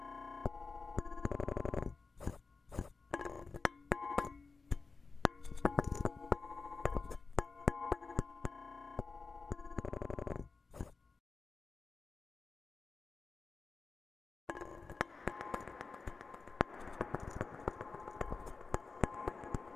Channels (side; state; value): right; quieter; 4.3 dB